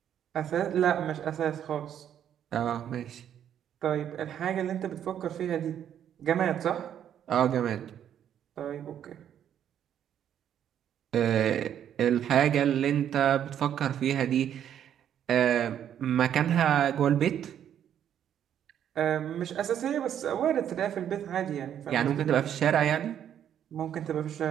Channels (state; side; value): quieter; left; 9.8 dB